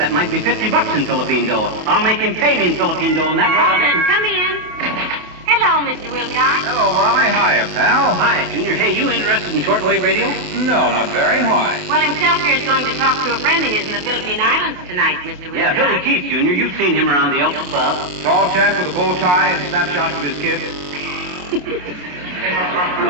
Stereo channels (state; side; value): late; left; 28 ms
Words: might be $50 in Philippine dough. I'll make him pay me in Philippine dough, and that way I'll get... Come in. Hello, Mr. Wilcox. Hello, Molly. Hiya, pal. Hi, Junior. Hey, you interested in shortwave radio? No, not very. Why? Well, himself here is going to talk to a friend of his in the Philippine Islands tonight, Mr. Wilcox. Yeah, Billy Keith, Junior. You've seen him around the Elks Club. Tall chap with a bow tie and snapshots of his kids?